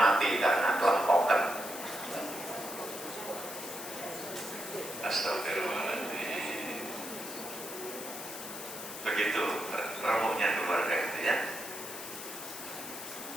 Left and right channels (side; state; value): left; noise; hiss, 9 dB below the sound